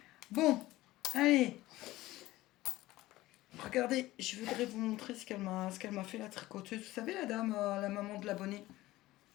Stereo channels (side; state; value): right; quieter; 17.4 dB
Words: Bon, allez. Regardez, je voudrais vous montrer ce qu'elle m'a fait, la tricoteuse. Vous savez, la dame, la maman de l'abonné.